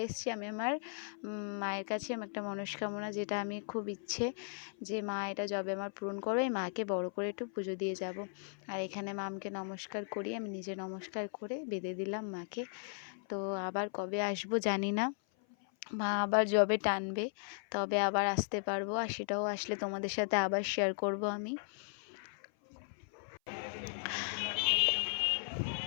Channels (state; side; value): silent; right; 53 dB below the other